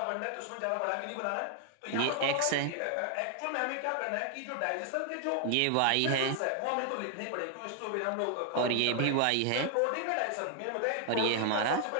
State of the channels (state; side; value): different; both; correlation 0.00